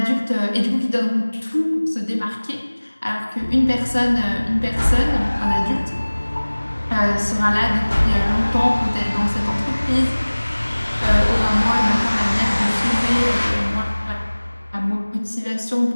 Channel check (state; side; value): inverted; both; correlation -1.00